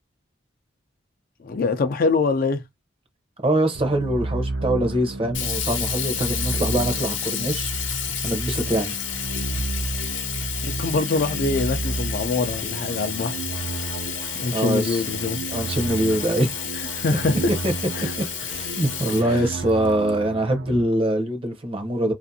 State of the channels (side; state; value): both; normal; correlation 0.55